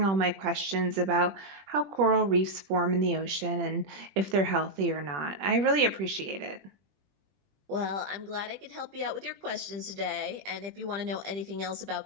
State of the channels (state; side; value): late; left; 21 ms